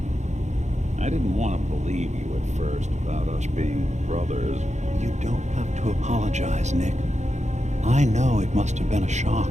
I didn't want to believe you at first about us being brothers. You don't have to apologize, Nick. I know it must have been a shock.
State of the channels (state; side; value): late; left; 0.34 ms